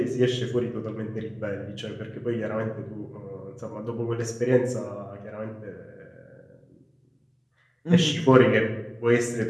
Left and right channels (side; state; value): both; identical; correlation 1.00